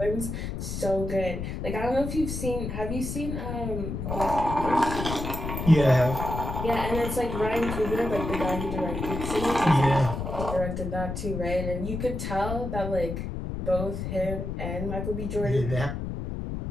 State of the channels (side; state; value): left; noise; rumble, 4 dB below the sound